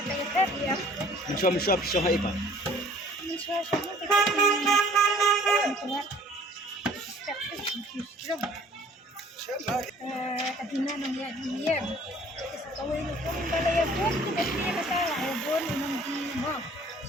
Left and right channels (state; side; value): normal; both; correlation 0.53